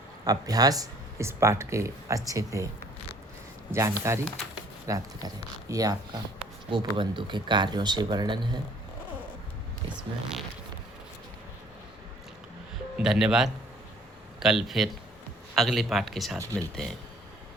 अभ्यास, इस पाठ के अच्छे से जानकारी प्राप्त करें। ये आपका गोपबंधु के कार्यों से वर्णन है इसमें। धन्यवाद। कल फिर अगले पाठ के साथ मिलते हैं।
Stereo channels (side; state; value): both; normal; correlation 0.57